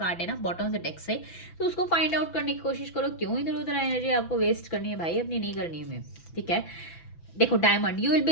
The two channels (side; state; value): right; late; 6.0 ms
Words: है ना बॉटम ऑफ द डेक से, तो उसको फाइंड आउट करने की कोशिश करो। क्यों इधर उधर एनर्जी आपको वेस्ट करनी है भाई, अपनी नहीं करनी है, ठीक है। देखो diamond, you will be